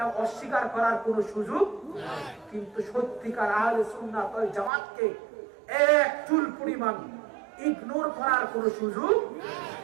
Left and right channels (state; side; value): drops out; left; at 4.7 s